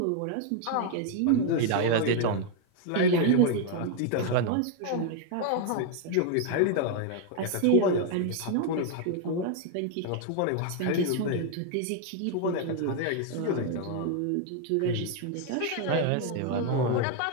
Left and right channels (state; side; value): different; both; correlation 0.00